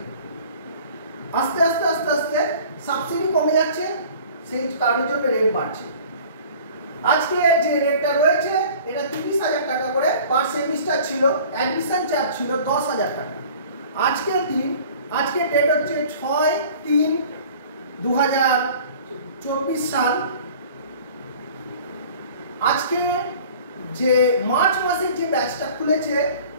আস্তে আস্তে আস্তে আস্তে সাবসিডি কমে যাচ্ছে, সেই কারণের জন্য রেট বাড়ছে। আজকে যে রেটটা রয়েছে এটা 30,000 টাকা করে পার সেমিস্টার ছিল, অ্যাডমিশন চার্জ ছিল 10,000 টাকা। আজকের ডেট হচ্ছে 6/3/2024 সাল। আজকে যে মার্চ মাসের যে ব্যাচটা খুলেছে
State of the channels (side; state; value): both; inverted; correlation -0.47